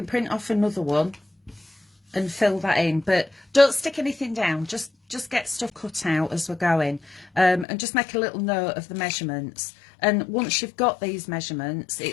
print off another one and fill that in. But don't stick anything down. Just get stuff cut out as we're going. And just make a little note of the measurements. And once you've got these measurements,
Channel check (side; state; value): right; drops out; at 7.7 s